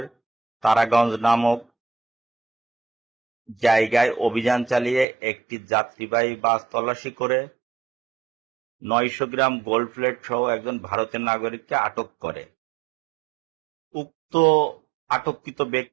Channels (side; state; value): left; drops out; at 5.1 s